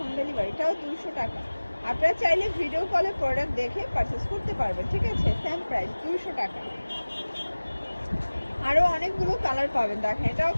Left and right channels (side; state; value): both; inverted; correlation -1.00